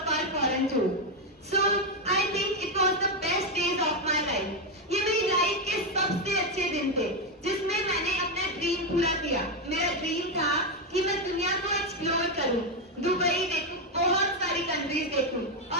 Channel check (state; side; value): normal; both; correlation 0.06